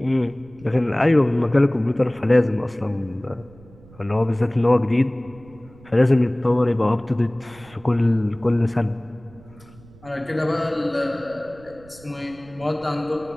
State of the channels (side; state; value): right; noise; rumble, 24 dB below the sound